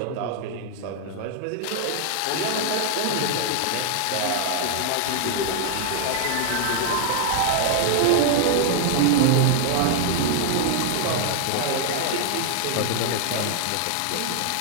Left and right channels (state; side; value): different; both; correlation -0.01